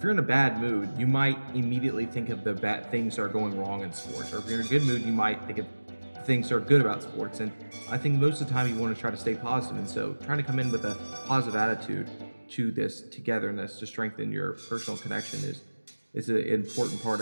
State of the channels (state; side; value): inverted; both; correlation -1.00